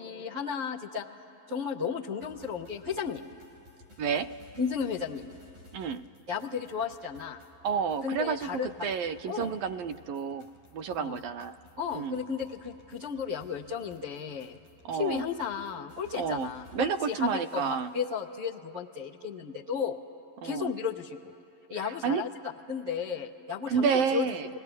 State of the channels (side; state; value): left; late; 11 ms